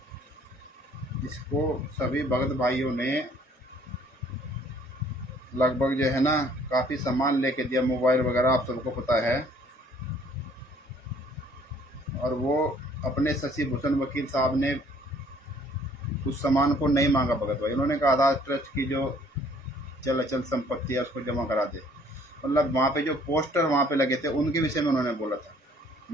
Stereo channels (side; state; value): both; normal; correlation 0.59